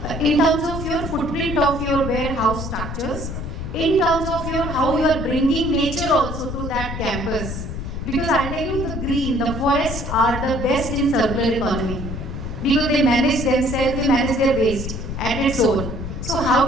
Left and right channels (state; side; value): noise; left; rumble, 6 dB below the sound